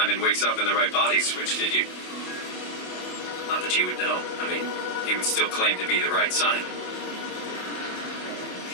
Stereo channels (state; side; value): late; right; 27 ms